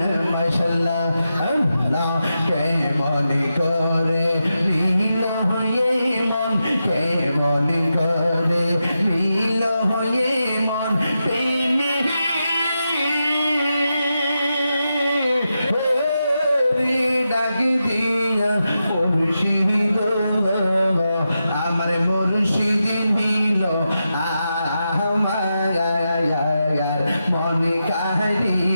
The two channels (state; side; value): inverted; both; correlation -0.89